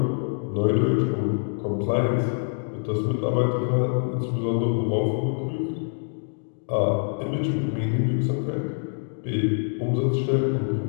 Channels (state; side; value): silent; right; digital silence